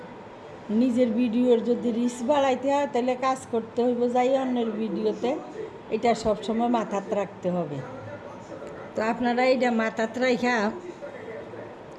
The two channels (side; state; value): both; identical; correlation 1.00